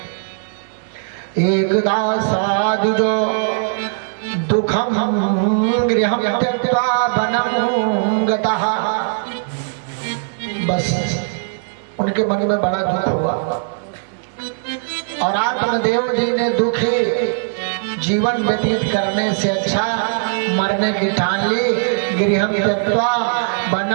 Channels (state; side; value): silent; left; digital silence